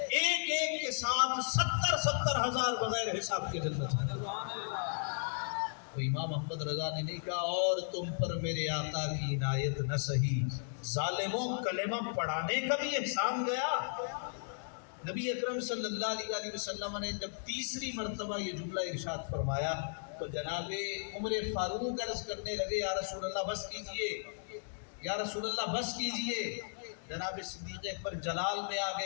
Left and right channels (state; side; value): silent; right; digital silence